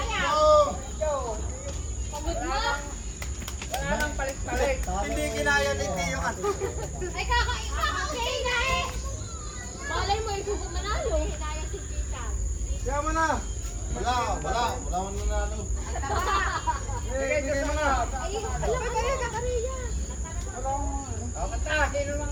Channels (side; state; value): both; identical; correlation 1.00